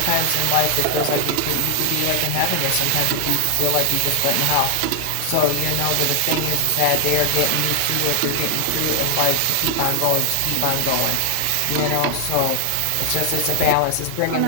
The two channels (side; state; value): both; different; correlation 0.00